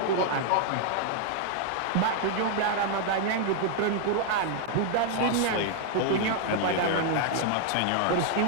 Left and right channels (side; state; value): both; different; correlation 0.00